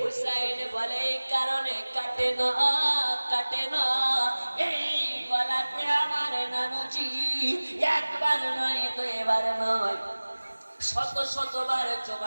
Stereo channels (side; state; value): both; inverted; correlation -1.00